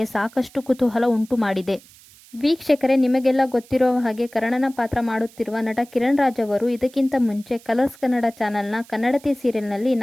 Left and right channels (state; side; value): noise; right; hiss, 24 dB below the sound